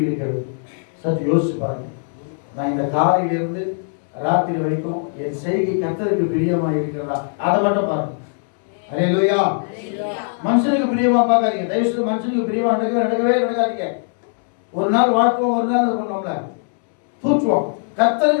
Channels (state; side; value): silent; right; digital silence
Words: இருக்கிறது சற்று யோசிச்சு பாருங்க. நான் இந்த காலையிலிருந்து ராத்திரி வரைக்கும் என் செய்கை கர்த்தருக்கு பிரியமா இருக்கிறதா, அதை மட்டும் பாருங்க. அல்லேலூயா. மனுஷனுக்கு பிரியமா பார்க்காதீங்க, தயவு செய்து மனுஷனுக்கு பிரியமா நடக்கவே நடக்காதீங்க. ஒரு நாள் வாழ்த்துவோம், ஒரு நாள் பண்ணோம்ல தூற்றுவோம்.